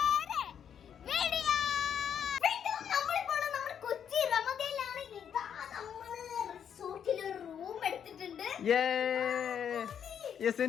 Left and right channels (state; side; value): quieter; right; 8.4 dB